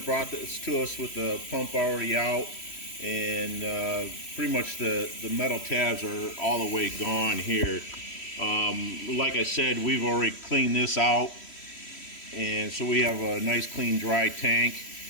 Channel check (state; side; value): late; right; 3.1 ms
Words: this to us with the pump already out, and pretty much the metal tabs are all the way gone here. Like I said, we've already cleaned this out, and so we have a nice clean dry tank.